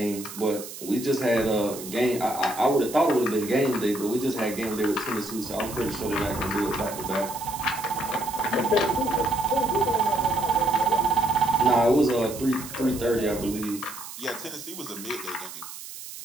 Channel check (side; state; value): right; noise; hiss, 12 dB below the sound